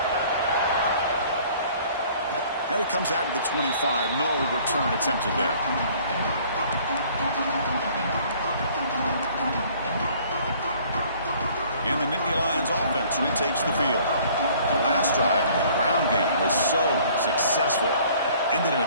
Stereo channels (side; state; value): both; inverted; correlation -0.55